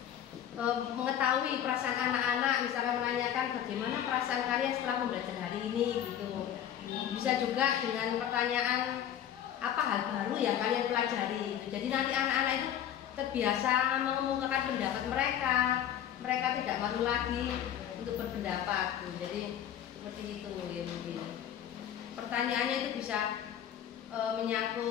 mengetahui perasaan anak-anak, misalnya menanyakan bagaimana perasaan kalian setelah pembelajaran hari ini gitu. Bisa juga dengan pertanyaan apa hal baru yang kalian pelajari gitu. Jadi nanti anak-anak itu terbiasa mengemukakan pendapat mereka. Mereka tidak malu lagi untuk berpendapat gitu. Jadi seperti itu ya mungkin. Pertanyaannya itu bisa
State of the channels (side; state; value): right; quieter; 10.3 dB